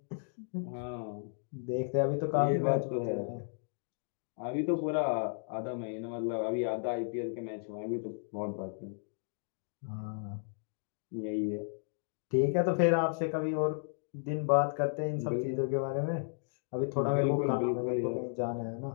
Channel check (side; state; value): right; silent; digital silence